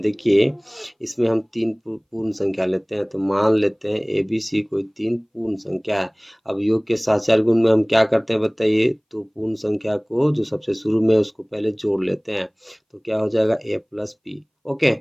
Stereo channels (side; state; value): both; identical; correlation 1.00